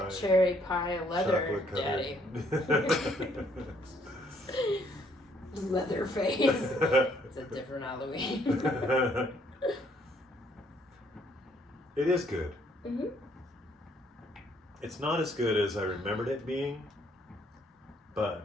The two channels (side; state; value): both; normal; correlation 0.66